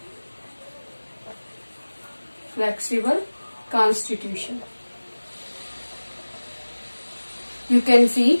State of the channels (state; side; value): inverted; both; correlation -1.00